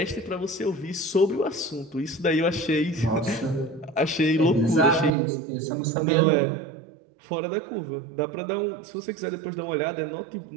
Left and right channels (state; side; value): drops out; left; at 5.1 s